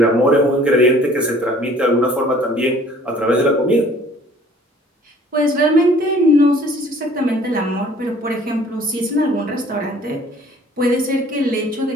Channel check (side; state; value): both; normal; correlation 0.54